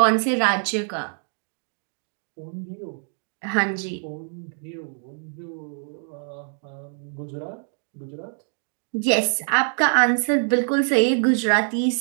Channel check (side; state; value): left; silent; 55 dB below the other